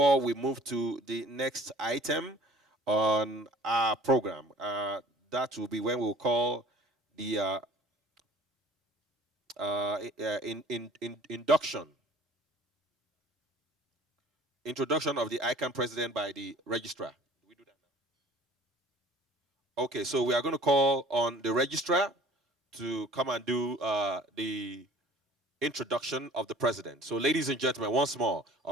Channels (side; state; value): both; normal; correlation 0.48